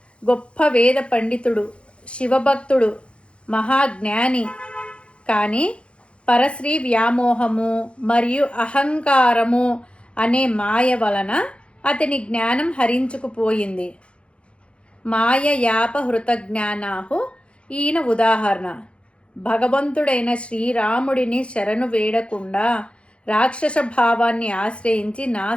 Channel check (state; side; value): late; right; 0.059 ms